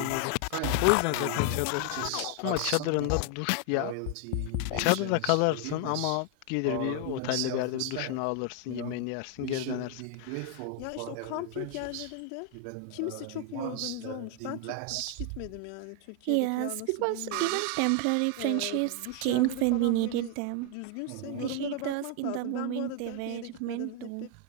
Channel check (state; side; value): different; both; correlation 0.00